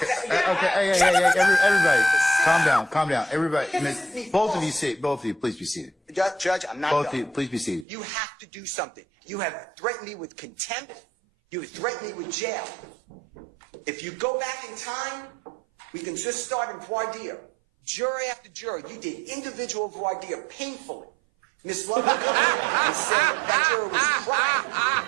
Okay, everybody, calm down. Everybody, both of you, please be seated. Judge, I'm not Both done. of you, please be seated. You have to do something. You have threatened me with contempt. You have threatened me with jail. If you go back in time, we can just start in voir dire. Jury after jury, you did individual voir dire painfully. Miss Love would come in and say that juror was crying.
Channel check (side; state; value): left; drops out; at 7.9 s